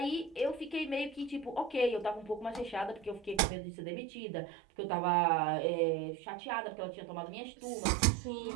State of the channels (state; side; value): drops out; left; at 3.4 s